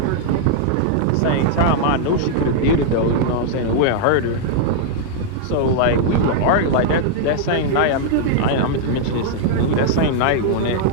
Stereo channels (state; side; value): different; both; correlation -0.01